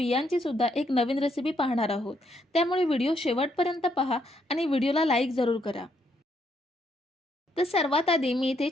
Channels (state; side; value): normal; both; correlation 0.74